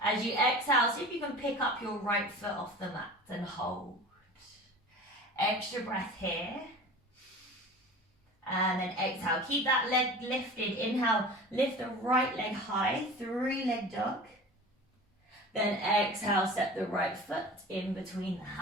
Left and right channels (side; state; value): both; normal; correlation 0.38